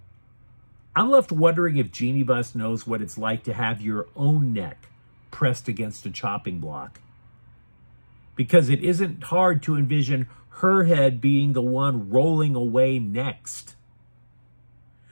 I'm left wondering if Jeannie Buss knows what it's like to have your own neck pressed against a chopping block. Because it isn't hard to envision her head being the one rolling away next.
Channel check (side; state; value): both; inverted; correlation -1.00